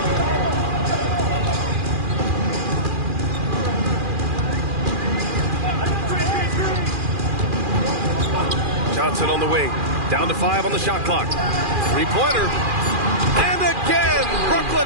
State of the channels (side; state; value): left; late; 2.4 ms